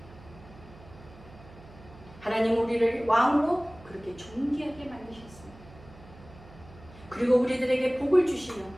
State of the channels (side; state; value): right; noise; hum, 20 dB below the sound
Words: 하나님 우리를 왕으로 그렇게 존귀하게 만드셨습니다. 그리고 우리들에게 복을 주시며